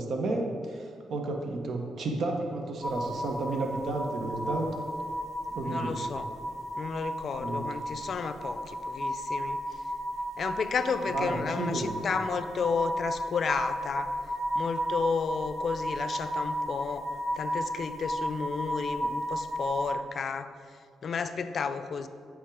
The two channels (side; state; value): both; normal; correlation 0.83